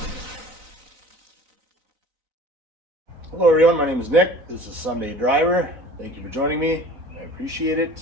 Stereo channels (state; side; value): late; left; 4.1 ms